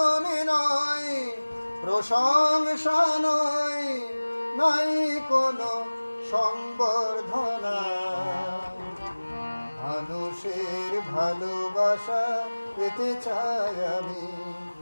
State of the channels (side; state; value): both; inverted; correlation -1.00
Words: নয়, প্রশংসা নয়, নাই কোনো সংবর্ধনা। মানুষের ভালোবাসা পেতে চাই আমি,